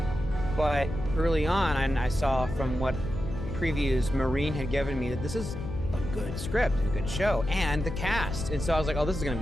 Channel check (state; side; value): noise; left; hum, 9 dB below the sound